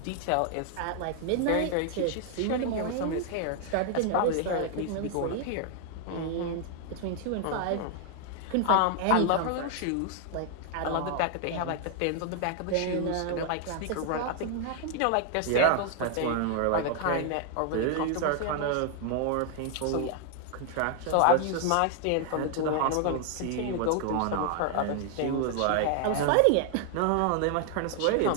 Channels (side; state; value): both; different; correlation 0.00